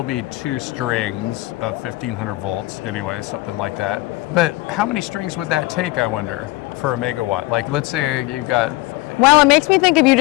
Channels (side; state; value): right; quieter; 20.2 dB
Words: be 2 strings of 1500 volts anyway, something like that. But how many strings would that take, I wonder, for a megawatt? Like, let's say you've got... Well, it makes me think if you